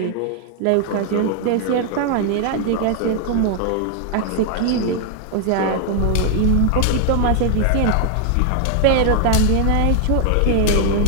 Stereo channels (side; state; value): both; different; correlation 0.00